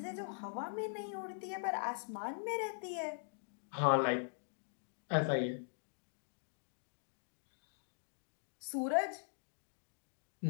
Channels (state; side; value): silent; right; digital silence